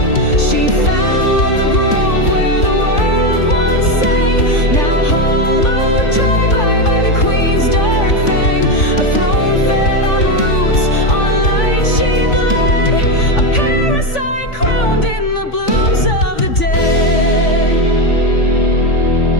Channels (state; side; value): late; right; 3.5 ms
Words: She found the grove where the world once sang, now hollowed dry by the queen's dark fang. A throne fed on roots, on light she bled, a parasite crowned in the blooms of the dead.